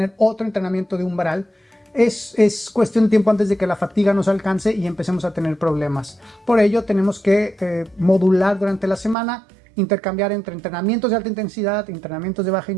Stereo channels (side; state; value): left; drops out; at 9.2 s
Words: otro entrenamiento de umbral es cuestión de tiempo antes de que la fatiga nos alcance y empecemos a tener problemas. Por ello tenemos que modular durante la semana, intercambiar entre entrenamientos de alta intensidad, entrenamientos de baja